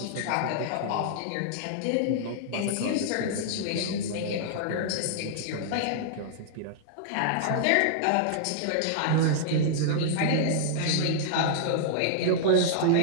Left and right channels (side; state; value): both; different; correlation -0.01